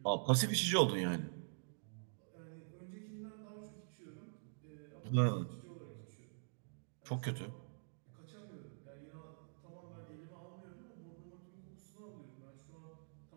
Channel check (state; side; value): silent; left; digital silence